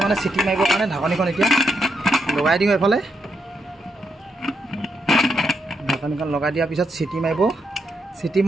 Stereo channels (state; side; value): normal; both; correlation 0.81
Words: মানে চিটি মাৰিবৰ কাৰণে ঢাকনিখন এতিয়া লগাই দিওঁ এইফালে ঢাকনিখন লগাই দিয়াৰ পিছত চিটি মাৰিব চিটি